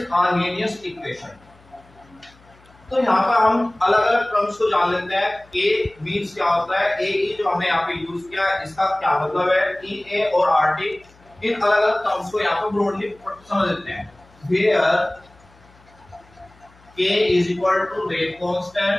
Arrhenius equation. तो यहाँ पर हम अलग अलग टर्म्स को जान लेते हैं. ए मीन्स क्या होता है, ए जो हमने यहाँ पे यूज किया है इसका क्या मतलब है, ई ए और आर टी. इन अलग अलग टर्म्स को यहाँ पर ब्रॉडली समझ लेते हैं. Where K is equal to rate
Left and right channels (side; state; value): left; noise; hum, 28 dB below the sound